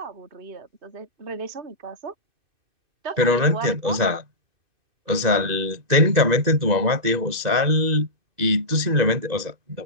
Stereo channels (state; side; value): late; left; 2.6 ms